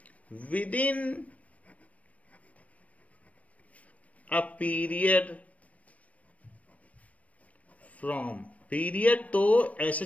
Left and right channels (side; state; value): right; late; 0.067 ms